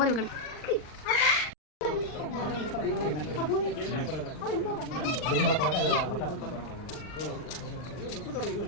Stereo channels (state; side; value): late; right; 39 ms